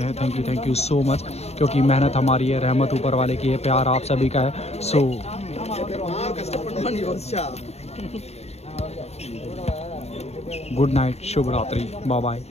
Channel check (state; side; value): late; right; 0.31 ms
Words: थैंक यू सो मच, क्योंकि मेहनत हमारी है, रहमत ऊपर वाले की है, प्यार आप सभी का है। सो गुड नाइट, शुभ रात्रि, bye bye